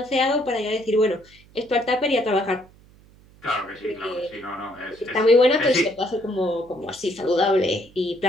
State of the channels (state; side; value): noise; right; hum, 26 dB below the sound